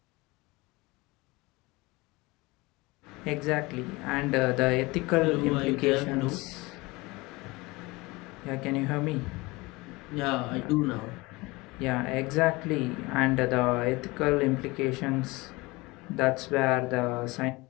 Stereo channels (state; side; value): quieter; right; 23.0 dB